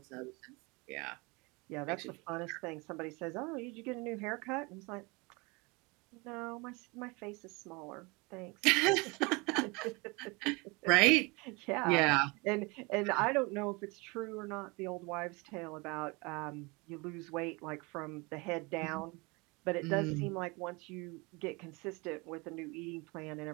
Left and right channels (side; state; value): left; quieter; 27.1 dB